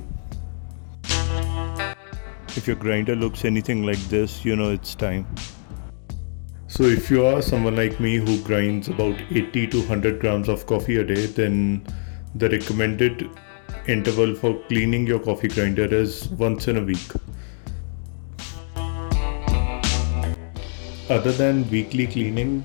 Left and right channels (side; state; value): right; silent; digital silence